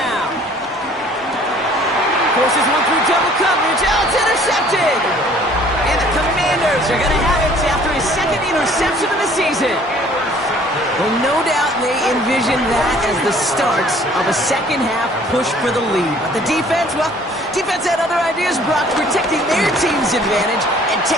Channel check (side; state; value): both; normal; correlation 0.55